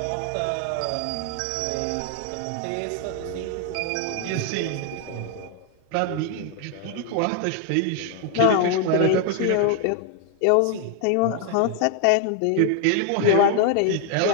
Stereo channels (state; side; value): different; both; correlation 0.00